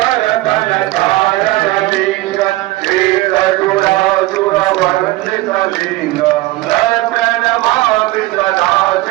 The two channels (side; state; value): left; quieter; 19.1 dB